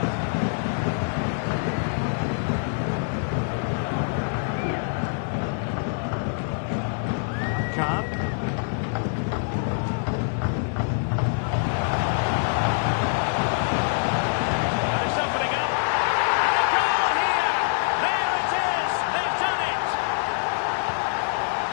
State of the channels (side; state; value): right; silent; 62 dB below the other